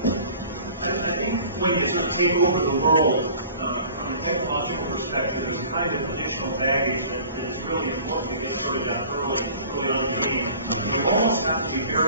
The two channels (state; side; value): inverted; both; correlation -0.46